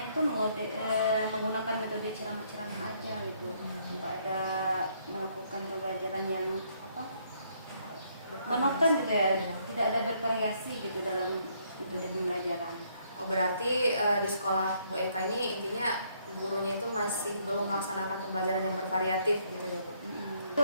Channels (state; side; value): inverted; both; correlation -0.69